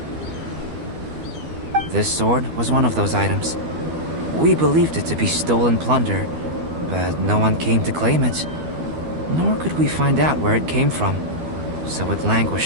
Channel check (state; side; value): late; left; 12 ms